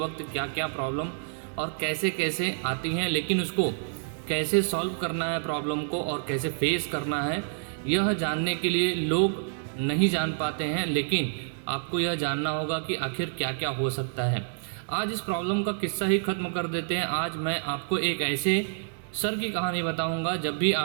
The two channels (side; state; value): left; silent; 57 dB below the other